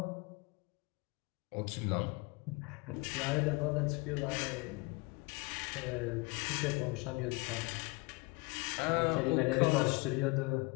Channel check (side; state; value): right; quieter; 27.3 dB